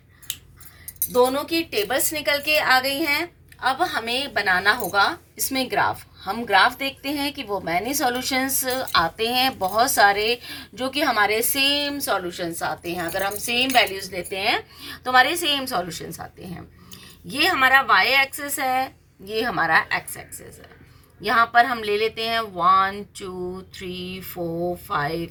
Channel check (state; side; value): identical; both; correlation 1.00